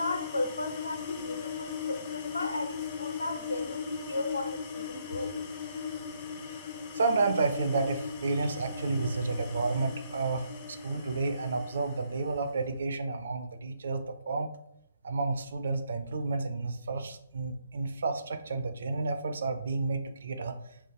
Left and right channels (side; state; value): both; inverted; correlation -0.74